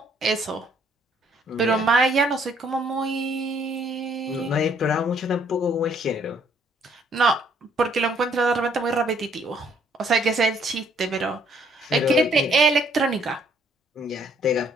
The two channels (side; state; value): both; normal; correlation 0.65